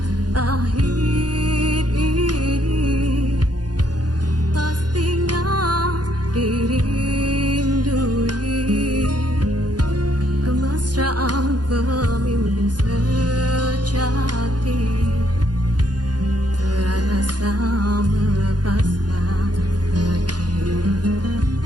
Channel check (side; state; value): left; late; 0.69 ms